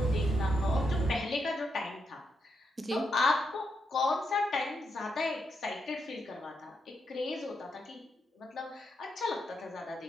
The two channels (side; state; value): both; normal; correlation 0.82